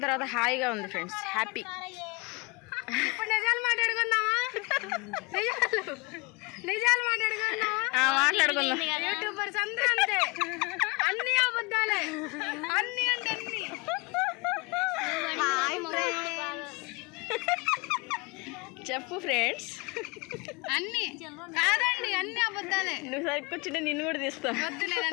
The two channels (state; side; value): quieter; right; 28.0 dB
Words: తర్వాత హాయిగా ఉంది ఫ్రెండ్స్. హ్యాపీ. ఇప్పుడు నిజాలు మాట్లాడుకుందామా? నిజాలు మాట్లాడుకుందామా? మాట్లాడుకుందాం. యూట్యూబర్స్ అందరూ అంతే, అన్ని అబద్ధాలే, అన్ని అంటే చెప్పు ఫ్రెండ్స్. అన్ని కాదండి, అన్ని అబద్ధాలే. నువ్వు సరికి కూర్చుంటే నిన్ను కూడా తీస్తా. వద్దులేదు,